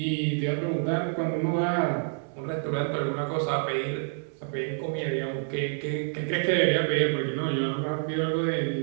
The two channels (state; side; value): silent; left; 60 dB below the other